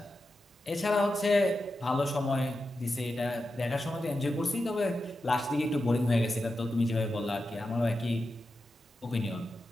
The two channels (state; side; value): normal; both; correlation 0.90